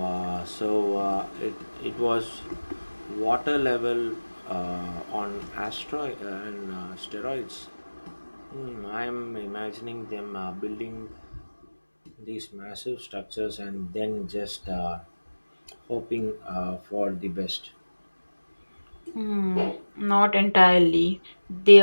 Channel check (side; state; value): both; inverted; correlation -1.00